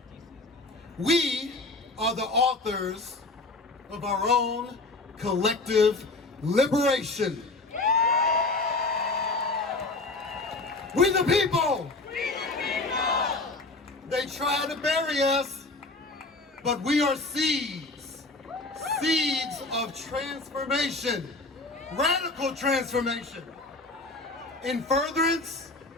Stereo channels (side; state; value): right; quieter; 3.2 dB